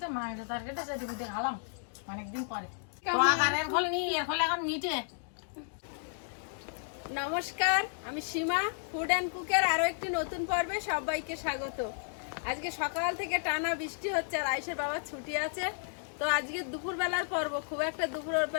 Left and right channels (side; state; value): right; silent; digital silence